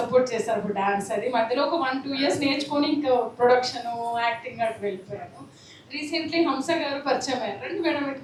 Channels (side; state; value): both; identical; correlation 1.00